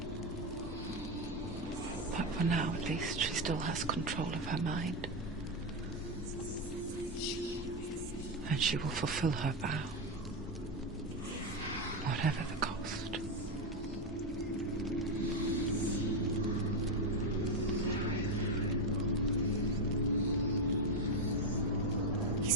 But for now, at least, she still has control of her mind. And she will fulfill her vow. Whatever the cost.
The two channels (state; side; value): normal; both; correlation 0.09